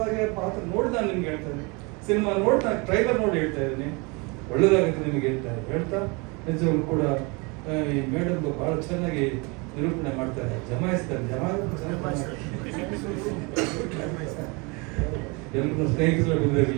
ಪಾತ್ರ ನೋಡಿ ನಾನು ನಿಮ್ಗೆ ಹೇಳ್ತಾ ಇದ್ದೀನಿ, ಸಿನಿಮಾ ನೋಡಿ ನಾನು ಟ್ರೈಲರ್ ನೋಡಿ ಹೇಳ್ತಾ ಇದ್ದೀನಿ, ಒಳ್ಳೇದಾಗುತ್ತೆ ನಿಮಗೆ ಹೇಳ್ತಾ ನಿಜವಾಗ್ಲೂ ಕೂಡ ಈ ಮೇಡಮ್ ಬಹಳ ಚೆನ್ನಾಗಿ ನಿರೂಪಣೆ ಮಾಡ್ತಾರೆ, ಜಮಾಯಿಸ್ತಾರೆ. ಎಲ್ಲರೂ ಸ್ನೇಹಿತರು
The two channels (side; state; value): left; quieter; 29.0 dB